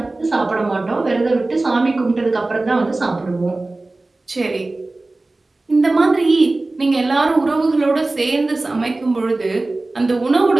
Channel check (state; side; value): quieter; left; 3.1 dB